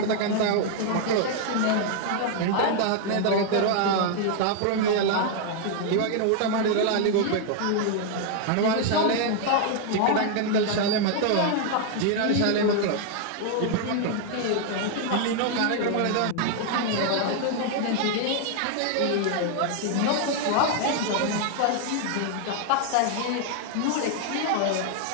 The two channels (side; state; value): both; different; correlation 0.00